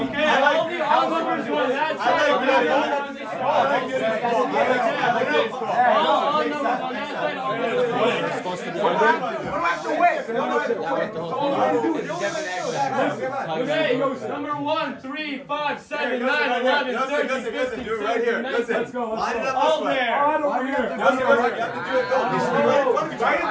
all numbers on that side. All numbers on that side. Okay, number 1, 3, 5, 7, 9, 11, 13, 15, 16, 19. Let's go. All there. All over here. Right in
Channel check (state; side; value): identical; both; correlation 1.00